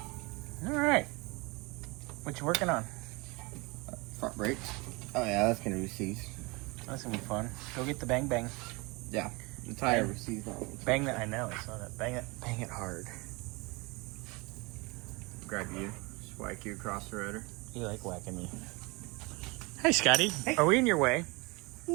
All right. What you working on? Front brakes. Oh, yeah, that's going to be seized. That's going to be fun. Go get the bang bang. Yeah, the tire was seized on it. Bang that, I know, I saw that. Bang it hard. Grab you, just whack you across the rotor. You like whacking me. Hey, Scotty. Hey. Are we in your way?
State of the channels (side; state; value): left; quieter; 26.3 dB